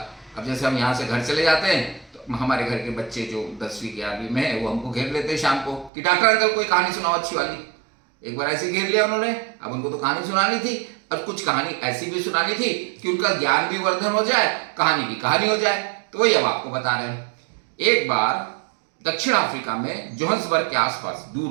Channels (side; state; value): left; drops out; at 5.9 s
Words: अब जैसे हम यहाँ से घर चले जाते हैं तो हमारे घर के बच्चे जो 10वीं 11वीं में है वो हमको घेर लेते हैं शाम को कि डॉक्टर अंकल कोई कहानी सुनाओ अच्छी वाली। एक बार ऐसे घेर लिया उन्होंने। अब उनको तो कहानी सुनानी थी और कुछ कहानी ऐसी भी सुनानी थी कि उनका ज्ञान भी वर्धन हो जाए, कहानी की कहानी हो जाए। तो वही अब आपको बता रहे हैं। एक बार दक्षिण अफ्रीका में जोहान्सबर्ग के आसपास